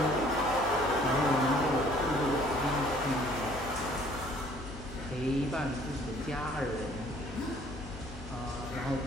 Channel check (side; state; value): both; normal; correlation 0.57